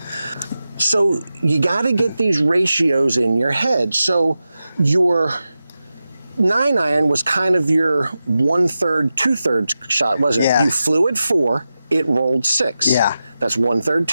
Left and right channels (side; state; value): both; inverted; correlation -0.92